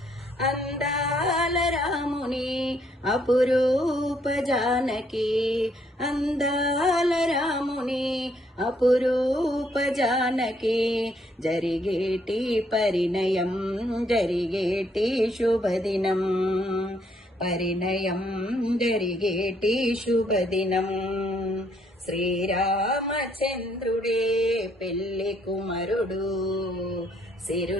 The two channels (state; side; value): normal; both; correlation 0.70